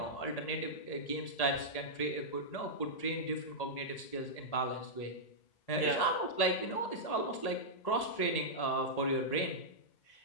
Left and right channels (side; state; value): right; late; 1.8 ms